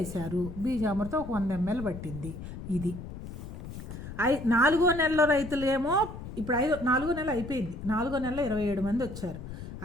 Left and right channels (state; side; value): noise; left; rumble, 10 dB below the sound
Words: బీజామృతం 100 ml పట్టింది. ఇది 4వ నెలలో రైతులు ఏమో ఇప్పుడు 4వ నెల అయిపోయింది. 4వ నెలలో 27 మంది వచ్చారు.